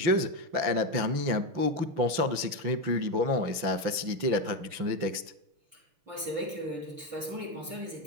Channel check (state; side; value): late; left; 5.9 ms